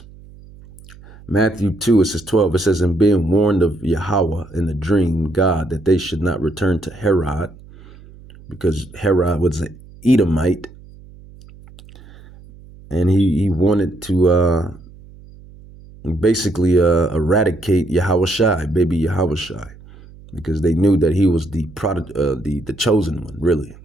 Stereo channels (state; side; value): noise; right; hum, 21 dB below the sound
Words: Matthew 2, it says 12, it says, "And being warned of Yahweh in a dream, God, that they should not return to Herod," because Herod was an Edomite, and he wanted to basically eradicate Yahawashi, baby Yahawashi, because they knew that he was the chosen one, really.